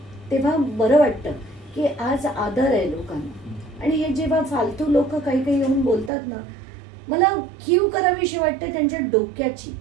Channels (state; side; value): drops out; left; at 6.1 s